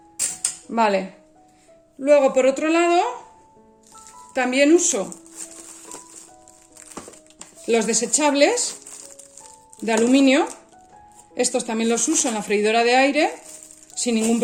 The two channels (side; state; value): both; identical; correlation 1.00